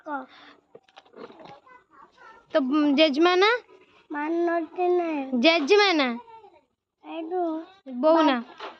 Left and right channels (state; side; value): identical; both; correlation 1.00